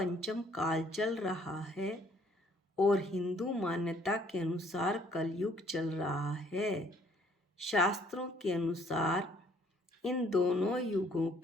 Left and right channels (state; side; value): normal; both; correlation 0.62